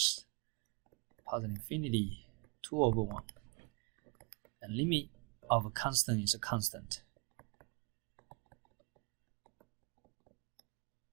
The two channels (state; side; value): quieter; left; 32.2 dB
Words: positive infinity 2 over 1. And limit of a constant is a constant.